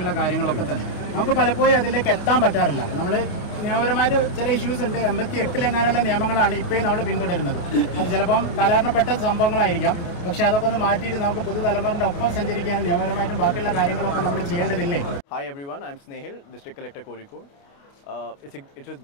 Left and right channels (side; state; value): right; late; 29 ms